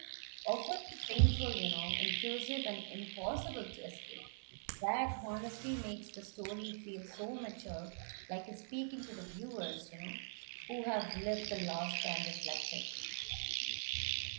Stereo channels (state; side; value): silent; left; digital silence